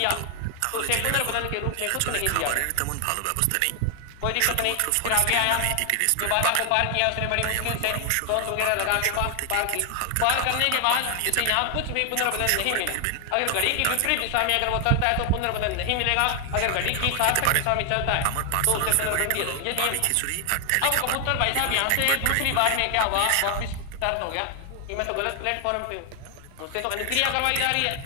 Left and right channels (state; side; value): different; both; correlation 0.00